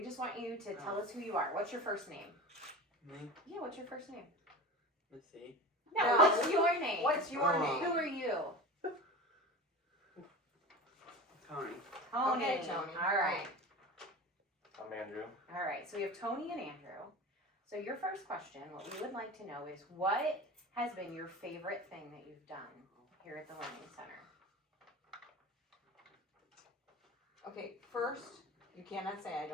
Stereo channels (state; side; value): normal; both; correlation 0.32